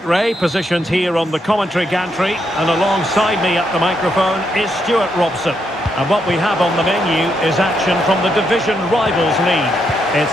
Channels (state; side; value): normal; both; correlation 0.79